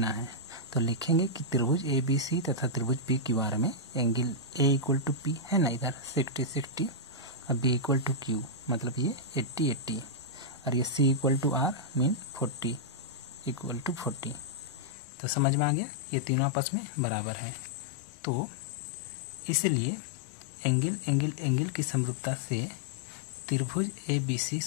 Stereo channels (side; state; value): right; drops out; at 15.0 s